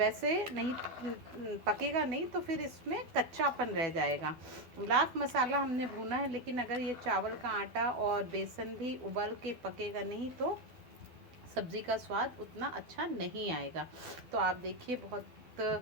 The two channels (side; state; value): left; late; 12 ms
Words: नहीं पकेगा नहीं, तो फिर इसमें कच्चापन रह जाएगा। लाख मसाला हमने भूना है, लेकिन अगर ये चावल का आटा और बेसन भी उबल के पकेगा नहीं तो सब्ज़ी का स्वाद उतना अच्छा नहीं आएगा। तो आप देखिए बहुत